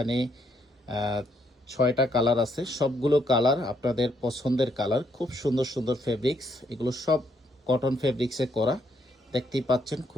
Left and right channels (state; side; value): normal; both; correlation 0.73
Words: 6টা কালার আছে, সবগুলো কালার আপনাদের পছন্দের কালার। খুব সুন্দর সুন্দর ফেব্রিক্স, এগুলো সব কটন ফেব্রিক্সে করা। দেখতেই পাচ্ছেন